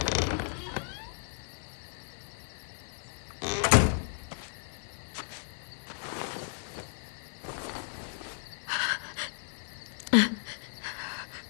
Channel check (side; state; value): right; silent; digital silence